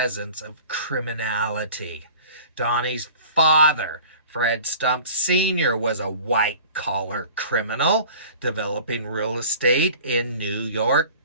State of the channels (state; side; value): inverted; both; correlation -0.44